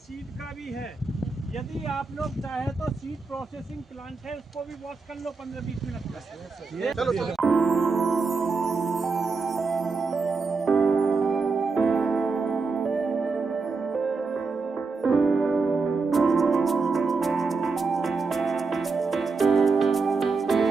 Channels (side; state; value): left; quieter; 4.3 dB